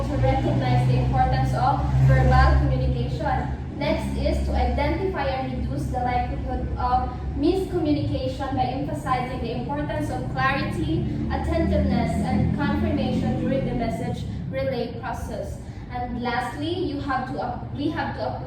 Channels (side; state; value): both; identical; correlation 1.00